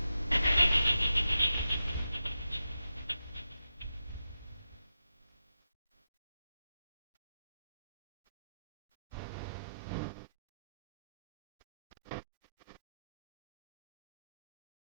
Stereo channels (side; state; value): both; inverted; correlation -0.90